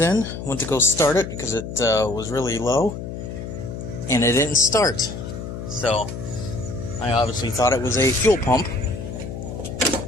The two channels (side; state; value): left; noise; hum, 8 dB below the sound